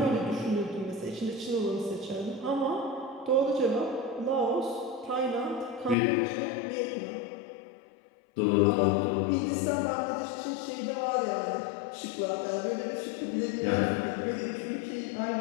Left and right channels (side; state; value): right; drops out; at 6.0 s